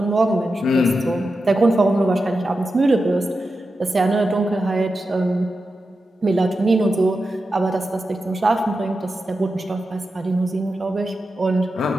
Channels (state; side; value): normal; both; correlation 0.90